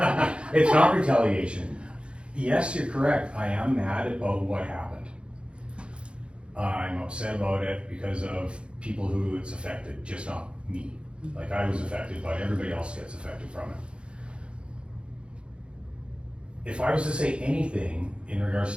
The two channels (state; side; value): late; left; 0.057 ms